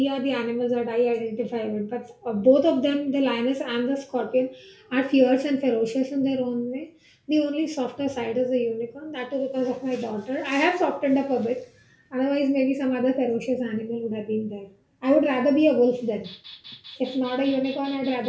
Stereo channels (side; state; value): both; identical; correlation 1.00